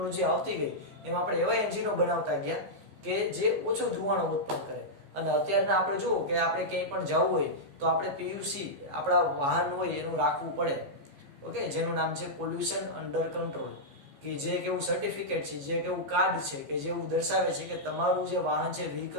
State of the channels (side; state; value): left; late; 15 ms